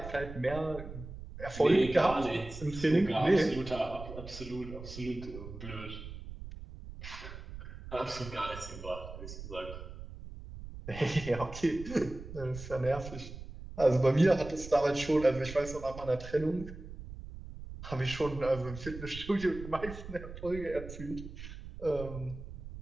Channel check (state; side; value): noise; right; rumble, 12 dB below the sound